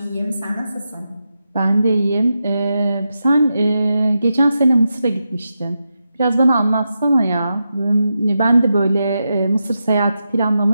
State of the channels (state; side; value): inverted; both; correlation -0.88